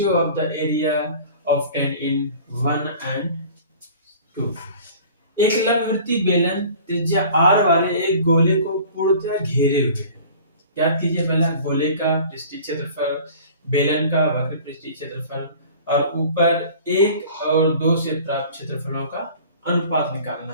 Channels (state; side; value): inverted; both; correlation -0.45